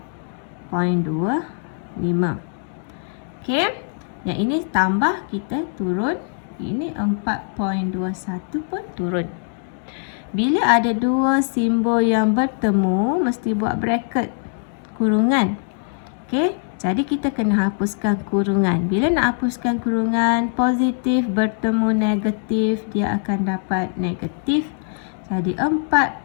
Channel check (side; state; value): right; silent; 64 dB below the other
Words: Okey, yang ini tambah, kita turun. Ini 4.21 pun turun. Bila ada dua simbol yang bertemu, mesti buat bracket, kurungan. Okey, jadi kita kena hapuskan kurungan. Bila nak hapuskan kurungan, positif bertemu negatif, dia akan dapat negatif. Jadi